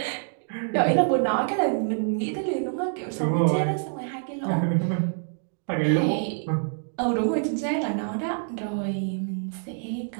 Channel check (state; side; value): silent; left; digital silence